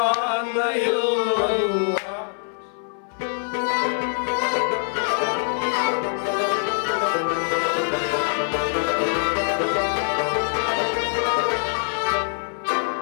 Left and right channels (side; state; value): right; silent; 59 dB below the other